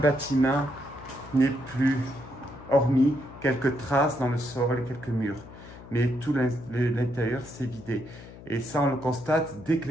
n'est plus, hormis quelques traces dans le sol et quelques murs. Mais tout l'intérieur s'est vidé. Et ça, on le constate, dès que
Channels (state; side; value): noise; left; hum, 17 dB below the sound